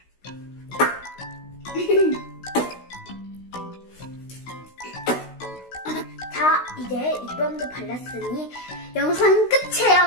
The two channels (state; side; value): late; right; 16 ms